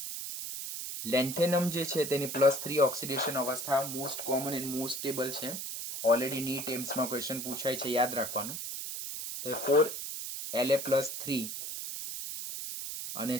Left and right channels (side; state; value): right; noise; hiss, 6 dB below the sound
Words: લેન્થેનમ જે છે તેની +3 ઓક્સિડેશન અવસ્થા most common and most stable છે. ઓલરેડી નીટ એમ્સમાં ક્વેશ્ચન પૂછાય છે, યાદ રાખવાનું. તો 4La+3 અને